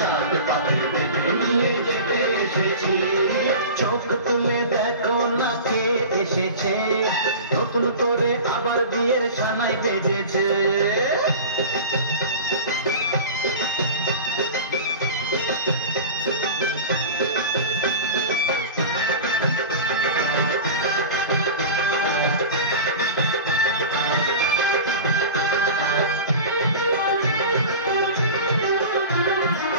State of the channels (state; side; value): inverted; both; correlation -0.33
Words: পাখি বেঁধে নিয়ে যেতে এসেছি। চোখ তুলে দেখো না কে এসেছে, নতুন করে আবার বিয়ের সানাই বেজেছে।